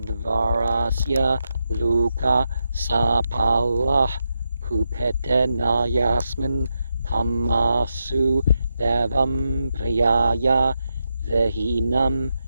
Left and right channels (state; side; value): inverted; both; correlation -0.85